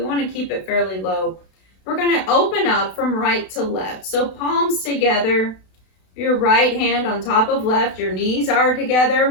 want to keep it fairly low. We're going to open up from right to left. So palms together, your right hand on top of left, your knees are together.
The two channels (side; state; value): right; late; 32 ms